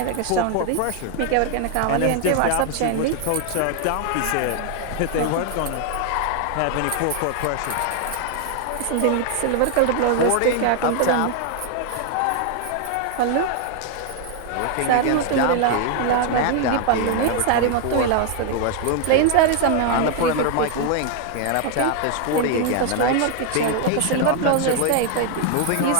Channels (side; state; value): both; different; correlation 0.00